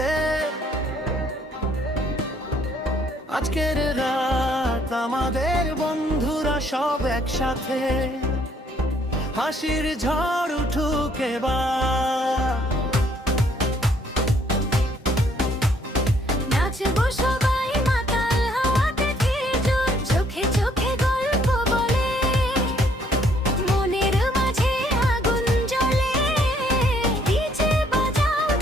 আজকের রাত আমাদের বন্ধুরা সব একসাথে, হাসির ঝড় উঠুক এবার। নাচবো সবাই মাতাল হাওয়াতে ফিরজোর, চোখে চোখে গল্প বলে, মনের মাঝে আগুন জ্বলে, ডিজে বাজাও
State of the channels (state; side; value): normal; both; correlation 0.65